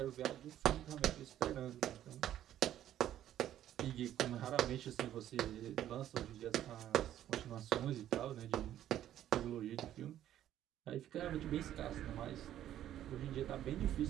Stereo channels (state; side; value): quieter; left; 11.8 dB